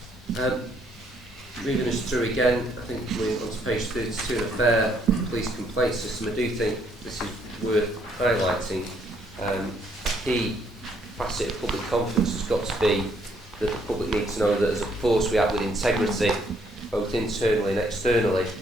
Moving us through again, I think we're on to page 32, the fair police complaint system. I do think this is worth highlighting. Key facet of public confidence has got to be that the public needs to know that as a force we act with integrity, both internally and externally.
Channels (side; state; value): both; normal; correlation 0.69